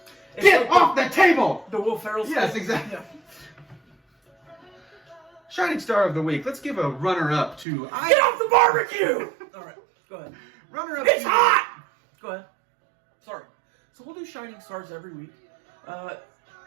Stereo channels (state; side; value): drops out; left; at 7.7 s